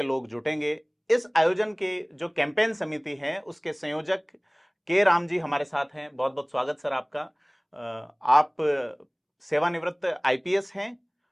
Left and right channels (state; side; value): identical; both; correlation 1.00